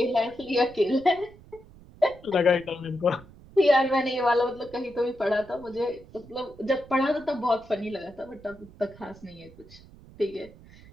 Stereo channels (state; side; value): noise; right; rumble, 22 dB below the sound